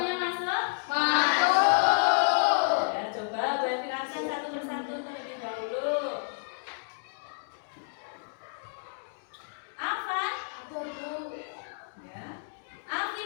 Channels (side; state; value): right; silent; digital silence